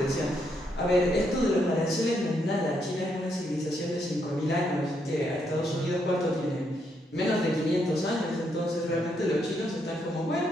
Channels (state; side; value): normal; both; correlation 0.76